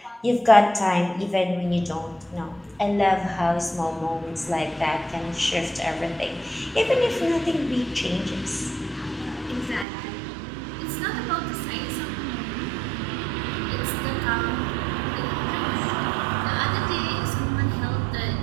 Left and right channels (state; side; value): drops out; left; at 9.9 s